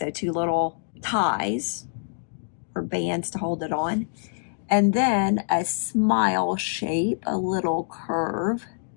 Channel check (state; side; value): silent; right; digital silence